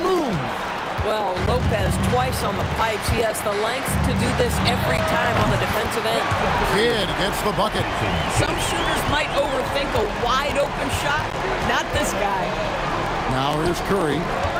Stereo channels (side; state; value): both; identical; correlation 1.00